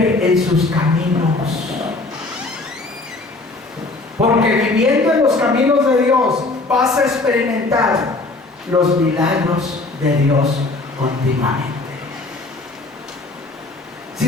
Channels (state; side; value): quieter; right; 3.2 dB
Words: en sus caminos. Porque viviendo en los caminos de Dios vas a experimentar los milagros de Dios continuamente.